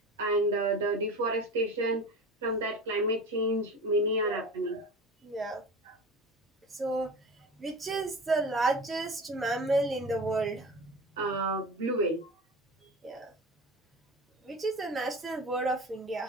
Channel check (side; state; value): both; normal; correlation 0.34